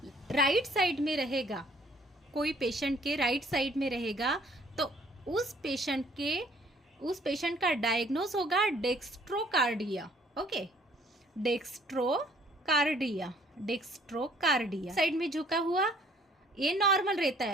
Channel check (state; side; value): normal; both; correlation 0.60